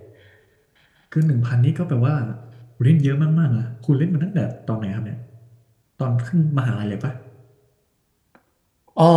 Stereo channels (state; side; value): identical; both; correlation 1.00